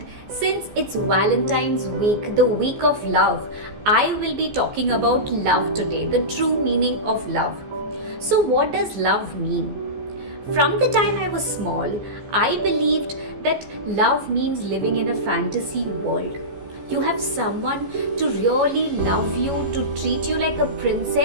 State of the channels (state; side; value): late; left; 14 ms